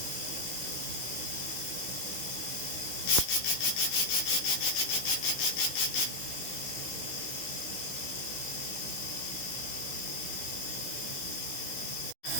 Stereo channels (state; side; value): late; right; 16 ms